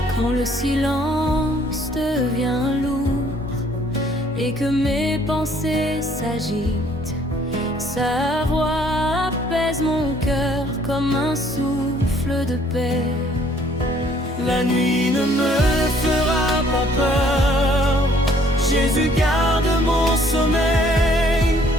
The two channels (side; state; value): both; normal; correlation 0.61